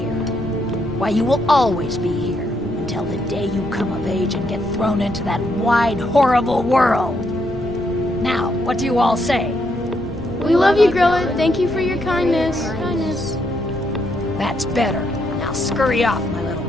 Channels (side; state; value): both; normal; correlation 0.76